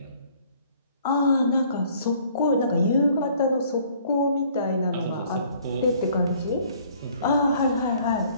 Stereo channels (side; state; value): both; inverted; correlation -0.58